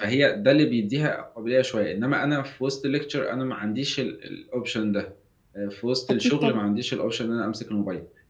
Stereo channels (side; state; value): both; identical; correlation 1.00